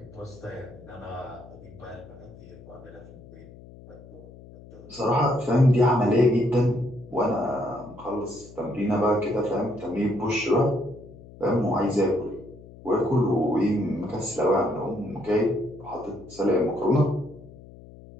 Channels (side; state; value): left; noise; hum, 19 dB below the sound